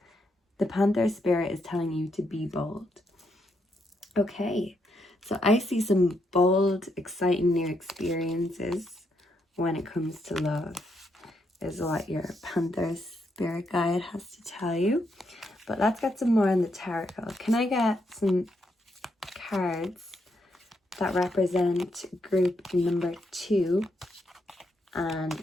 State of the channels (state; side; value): normal; both; correlation 0.79